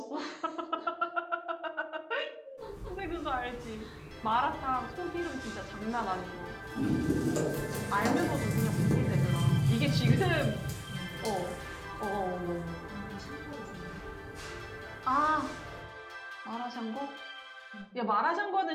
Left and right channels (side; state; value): both; identical; correlation 1.00